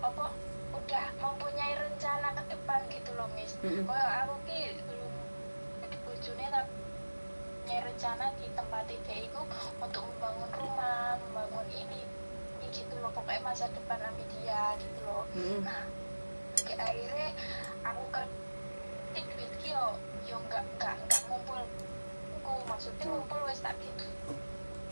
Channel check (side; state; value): both; inverted; correlation -1.00